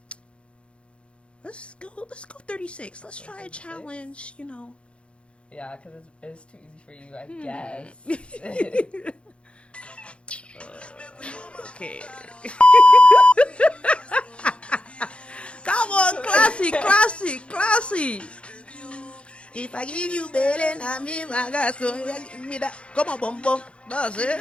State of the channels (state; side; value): late; right; 0.059 ms